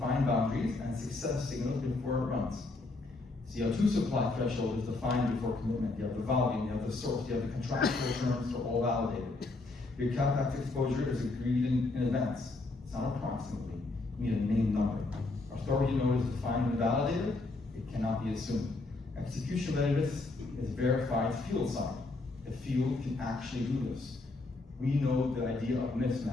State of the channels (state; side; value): quieter; right; 3.3 dB